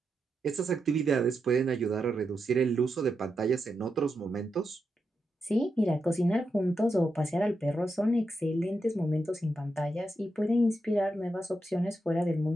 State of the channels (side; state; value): both; normal; correlation 0.86